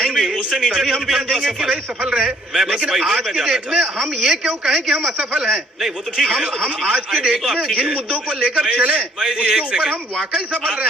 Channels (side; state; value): both; normal; correlation 0.62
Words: तभी हम समझेंगे कि भाई सफल रहे। लेकिन आज के डेट में हम ये क्यों कहें कि हम असफल हैं? नहीं, वो तो ठीक है। हम आज के डेट में जिन मुद्दों को लेकर चले उसके ऊपर हम वाकई सफल रहे